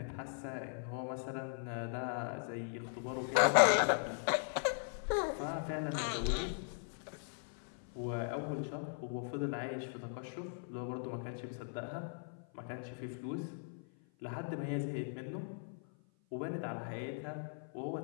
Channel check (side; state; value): right; silent; 52 dB below the other